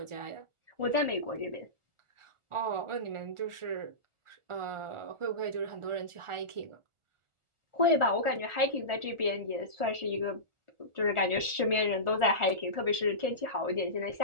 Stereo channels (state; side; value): late; left; 1.4 ms